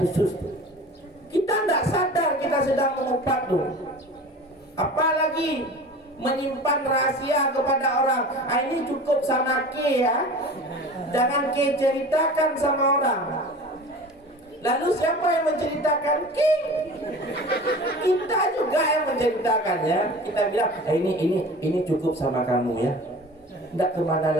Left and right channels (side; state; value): both; normal; correlation 0.38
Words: Kita tidak sadar kita sedang mengupat tuh. Apalagi menyimpan rahasia kepada orang. Ini cukup sama ke ya. Jangan ke ceritakan sama orang. Lalu siapa yang menceritakan? Kita juga yang menceritakan ya. Kita bilang, ini cukup sama kamu ya. Tidak kemana